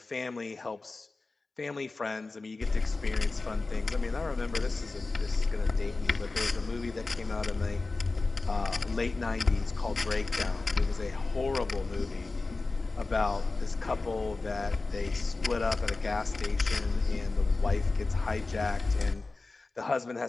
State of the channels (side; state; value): right; quieter; 3.6 dB